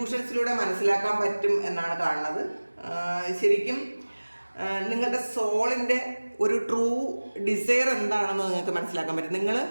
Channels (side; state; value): both; inverted; correlation -1.00